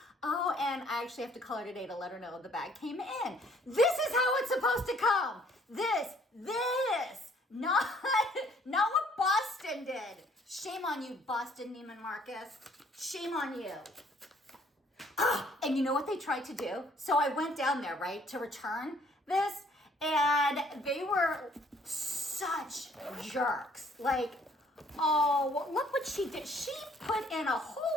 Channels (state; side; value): normal; both; correlation 0.61